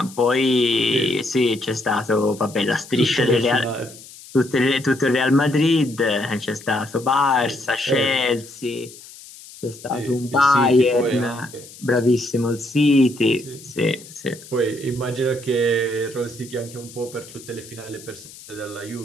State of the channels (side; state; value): left; noise; hiss, 18 dB below the sound